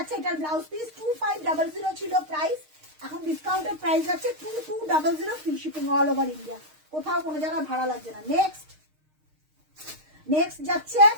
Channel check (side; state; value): left; late; 6.5 ms